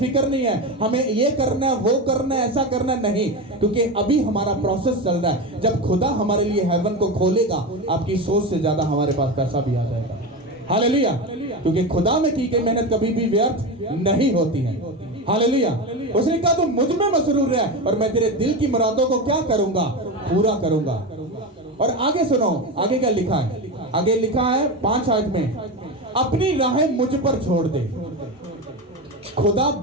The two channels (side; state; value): both; normal; correlation 0.20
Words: नहीं है, हमें ये करना है, वो करना है, ऐसा करना है, नहीं, क्योंकि अभी हमारा प्रोसेस चल रहा है। जब खुदा हमारे लिए हेवन को खोलेगा, आपकी सोच से ज्यादा हमारे पास पैसा भी आ जाएगा। हालेलुया, क्योंकि खुदा में की गई मेहनत कभी भी व्यर्थ नहीं होती है। हालेलुया। उसने कहा तू मुझ में मसरूर रह और मैं तेरे दिल की मुरादों को क्या करूंगा, पूरा करूंगा। और आगे सुनो, आगे क्या लिखा है? आगे लिखा है 5 आयत में, अपनी राहें मुझ पर छोड़ दे। खुदा